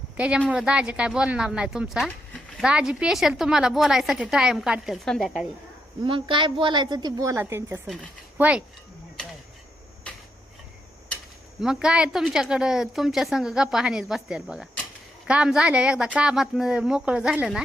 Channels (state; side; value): normal; both; correlation 0.80